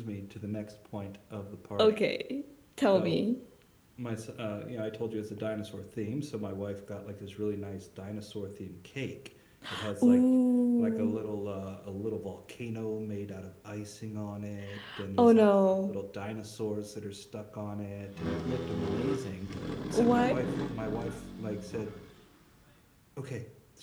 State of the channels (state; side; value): identical; both; correlation 1.00